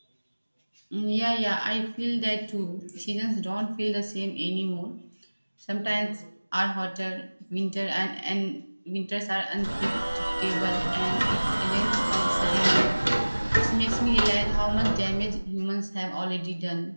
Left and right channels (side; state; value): both; inverted; correlation -1.00